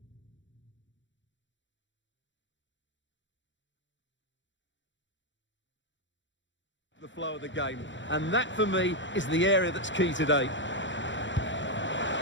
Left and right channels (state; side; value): late; right; 0.54 ms